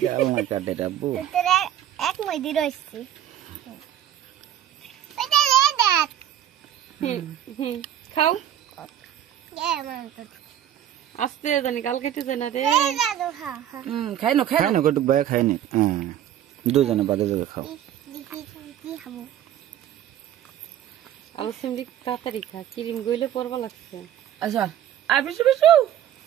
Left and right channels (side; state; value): left; quieter; 11.1 dB